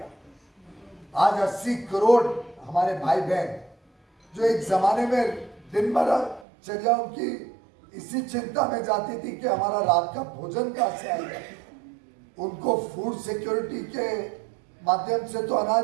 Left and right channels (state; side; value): drops out; left; at 6.5 s